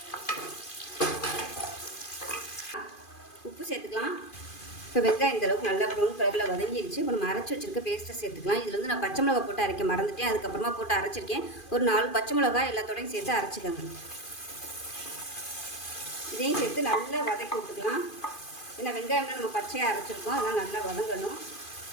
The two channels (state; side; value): late; right; 2.5 ms